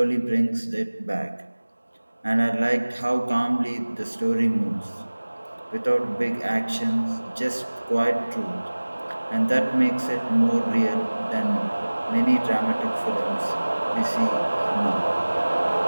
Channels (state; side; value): inverted; both; correlation -1.00